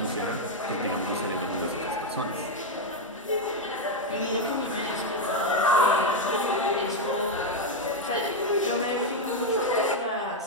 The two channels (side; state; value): both; normal; correlation 0.04